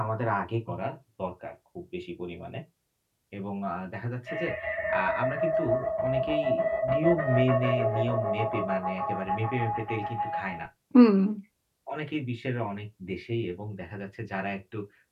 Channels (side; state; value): both; identical; correlation 1.00